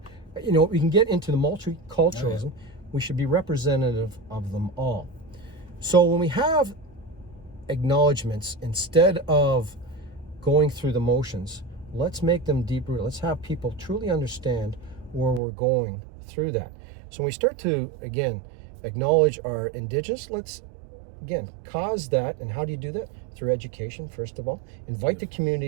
we can get into the multiculturalism. We should be representative of them all. So when we have acknowledgements, instead of going through the motions, let's make them deep rooted. Let's have people truly understand where we're going through that. So when we start to, again, acknowledge our Indigenous, let's, again, cause that. And how do you do that? Through education, first of all. Invite the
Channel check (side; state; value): left; drops out; at 15.4 s